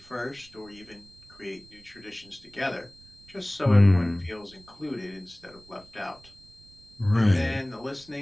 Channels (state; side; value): noise; right; rumble, 25 dB below the sound